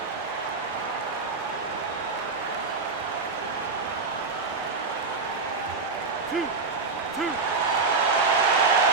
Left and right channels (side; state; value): left; quieter; 4.3 dB